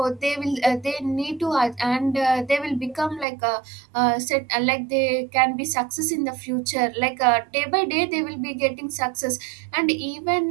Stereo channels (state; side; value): drops out; left; at 3.2 s